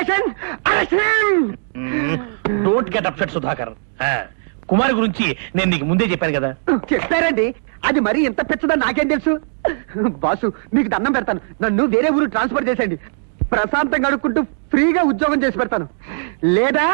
Don't get upset Sudhakar. Kumari గురించి నేను నీకు ముందే చెప్పాను కదా. చెప్పారండి, అది మరి ఎంత పెచ్చదని నాకేం తెలుసు. బాసు మీకు దండం పెడతాను, నన్ను వేరే ఊరు ట్రాన్స్ఫర్ చేసేయండి. ప్రశాంతంగా అడుక్కుంటూ ఫ్రీగా ఉద్యోగం చేసి పెడతాను. లేదా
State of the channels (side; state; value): left; silent; digital silence